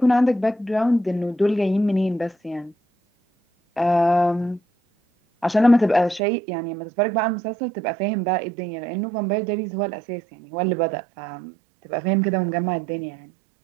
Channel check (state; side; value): drops out; left; at 6.2 s